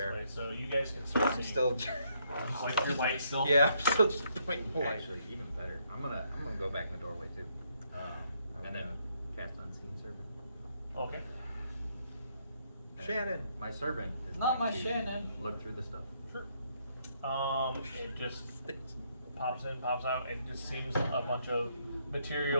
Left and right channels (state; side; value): inverted; both; correlation -0.73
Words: this way, so you guys can start I'm seeing. still. Just like your light still. Yeah, I'm still just pointing the light. Actually, even better. I'm gonna go back in the doorway too, and then Okay. cast unseen servant. Okay. And Shannon. my servant is Not going my to Shannon. Look through the stuff. Sure. It just pops in, pops out. It just seems a bunch of